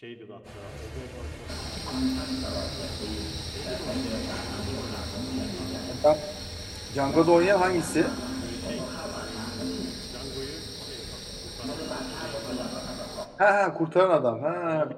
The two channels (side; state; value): both; identical; correlation 1.00